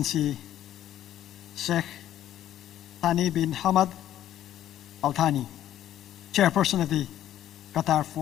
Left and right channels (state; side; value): quieter; right; 12.0 dB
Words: Sheikh Thani bin Hamad Al Thani, Chairperson of the Qatar